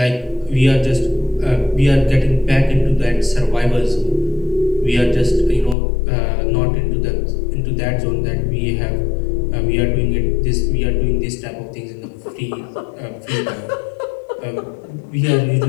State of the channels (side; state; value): right; drops out; at 5.8 s